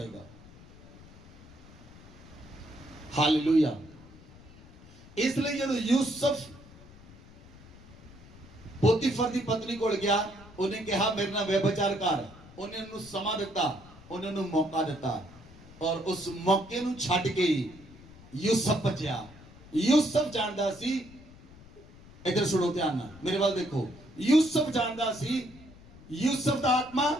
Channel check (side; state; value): left; noise; rumble, 21 dB below the sound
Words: हालेलुया इसलिए जब यूसुफ पोतीफर की पत्नी को गया उन्हें कहा मेरे नाल व्यभिचार कर उन्हें उन्हें समा दिता उन्हें उन्हें मौका दिता और उस मौके ਨੂੰ ਛੱਡ ਕੇ यूसुफ बचा यूसुफ जानदा सी इधर सुनो ध्यान ਨਾਲ मेरे वाल देखो यूसुफ जानदा सी यूसुफ ਦਾ ਆਤਮਾ